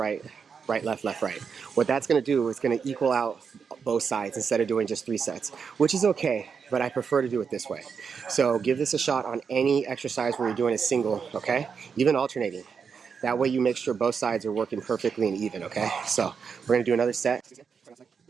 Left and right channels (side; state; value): left; quieter; 6.1 dB